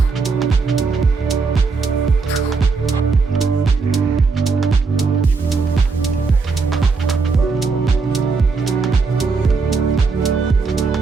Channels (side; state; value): left; quieter; 4.5 dB